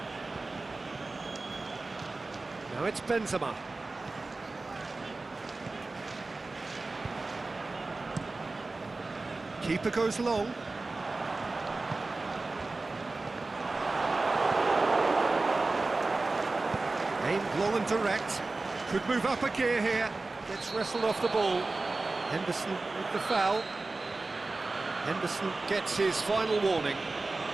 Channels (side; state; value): left; quieter; 3.4 dB